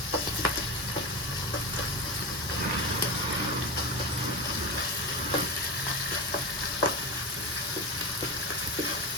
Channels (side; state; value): both; normal; correlation 0.21